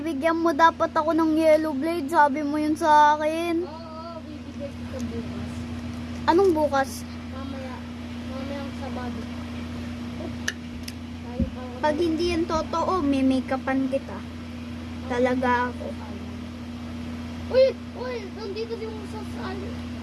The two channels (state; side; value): identical; both; correlation 1.00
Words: mo dapat ako ng yellow blade. Sabi mo yun sa akin. Oo, bibigay kita bukas. Anong bukas? Mamaya. Mamayang Sabado. Pag hindi yan totoo, may make-upan kita. Talaga ako. Uy! Uy! Nandito yung sasali.